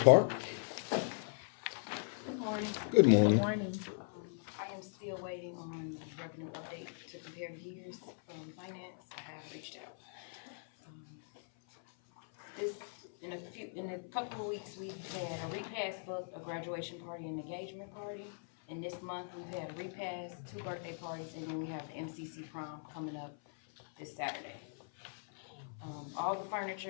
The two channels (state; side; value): silent; right; 52 dB below the other